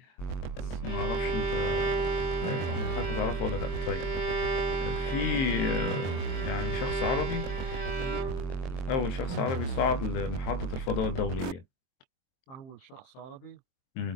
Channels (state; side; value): late; right; 23 ms